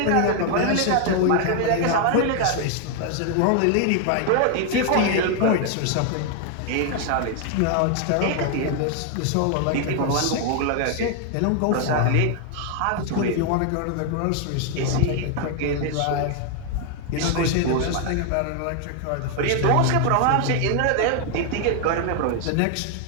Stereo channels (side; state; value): both; different; correlation 0.00